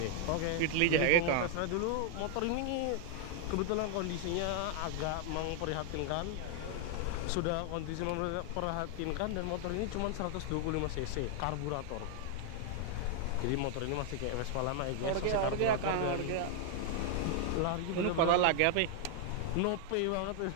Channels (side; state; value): both; different; correlation 0.00